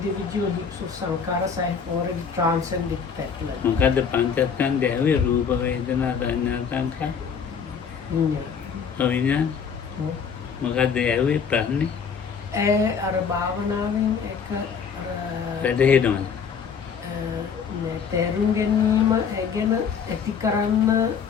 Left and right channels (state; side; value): quieter; right; 6.5 dB